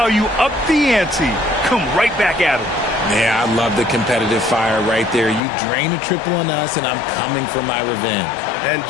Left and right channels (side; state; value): right; drops out; at 5.4 s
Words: you up the ante. Come right back at him. Yeah, I love the competitive fire right there. You drain a triple on us, and I'm coming for my revenge. And